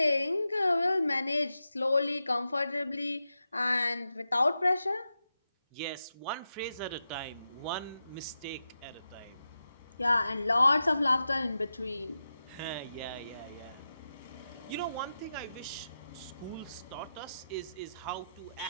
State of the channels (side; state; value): both; inverted; correlation -0.90